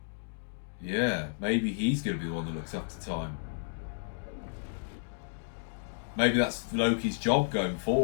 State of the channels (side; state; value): right; silent; digital silence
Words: Yeah, maybe he's going to be the one that looks after time. Maybe that's Loki's job going